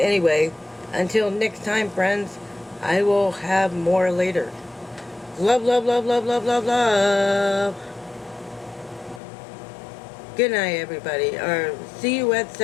until next time, friends, I will have more later. Love, love, love, love, love, love, love. Good night, everybody. Or see you at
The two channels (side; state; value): right; drops out; at 9.2 s